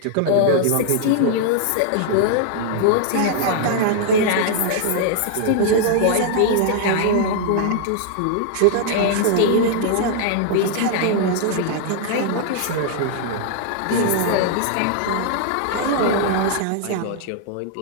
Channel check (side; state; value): both; different; correlation -0.01